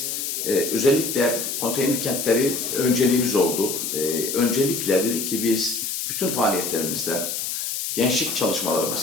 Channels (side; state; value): left; noise; hiss, 3 dB below the sound